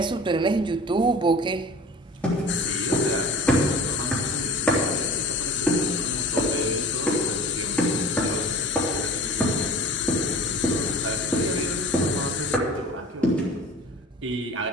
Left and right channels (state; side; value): normal; both; correlation 0.40